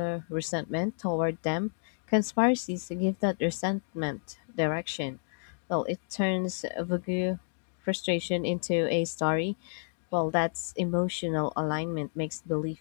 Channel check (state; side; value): silent; right; digital silence